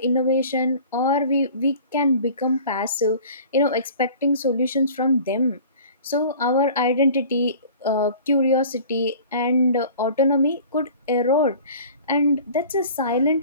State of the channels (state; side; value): inverted; both; correlation -0.45